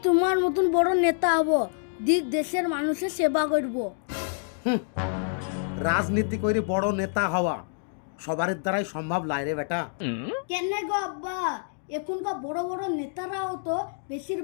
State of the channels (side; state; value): right; silent; digital silence